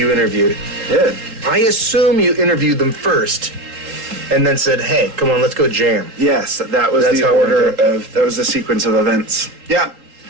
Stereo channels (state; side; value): late; left; 3.8 ms